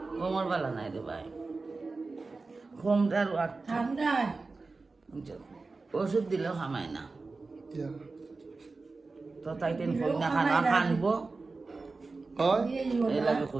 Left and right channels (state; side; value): quieter; left; 3.8 dB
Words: খমর বালা নাই রে ভাই খমটার ঠান্ডা ওষুধ দিলেও খামায় না ইয়া তো তাই টেন কই না খানা খানবো হয় এই লাগে